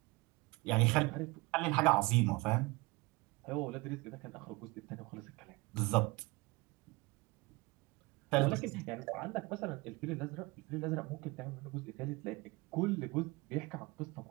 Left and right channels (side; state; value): left; quieter; 24.0 dB